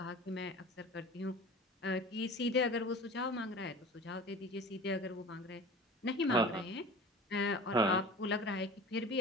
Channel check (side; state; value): both; normal; correlation 0.38